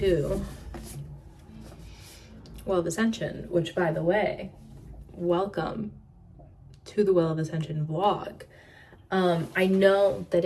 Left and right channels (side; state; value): both; identical; correlation 1.00